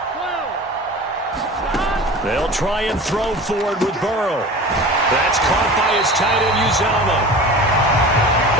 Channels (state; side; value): normal; both; correlation 0.37